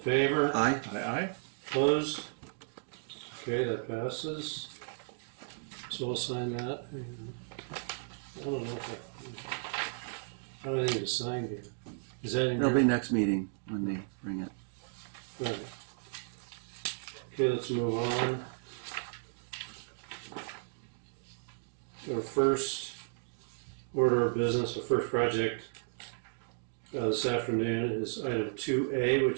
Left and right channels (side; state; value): left; silent; digital silence